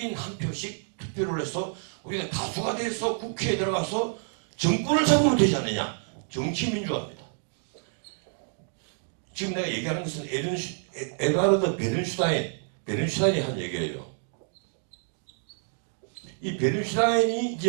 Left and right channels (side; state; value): left; silent; 59 dB below the other